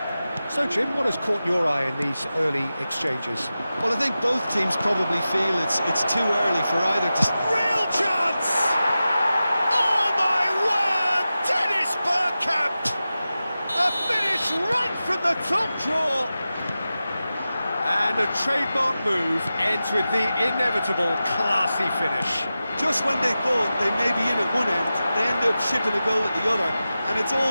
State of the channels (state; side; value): inverted; both; correlation -0.94